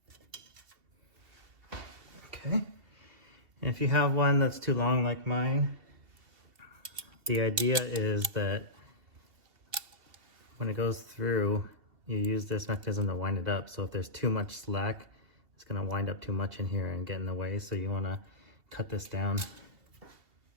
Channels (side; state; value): left; late; 2.6 ms